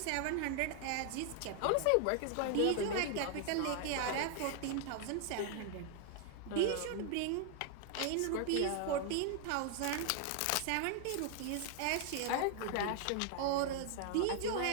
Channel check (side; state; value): both; different; correlation 0.00